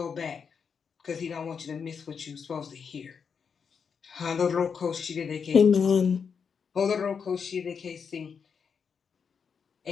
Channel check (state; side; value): quieter; right; 6.3 dB